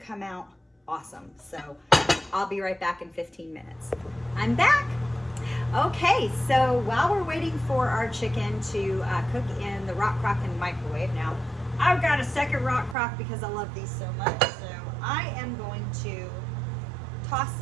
come out awesome. So I'll be right back in 15 minutes. I'm back. Okay, so while we're waiting for our chicken to cook in the Rock Crock in the microwave, now I've got a second Rock Crock because I love these so much. So I am going to toss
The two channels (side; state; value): left; drops out; at 13.0 s